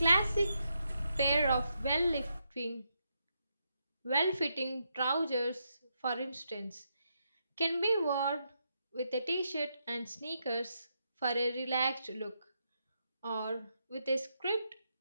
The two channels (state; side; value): inverted; both; correlation -0.81